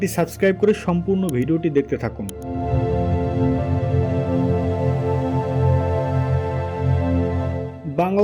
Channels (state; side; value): identical; both; correlation 1.00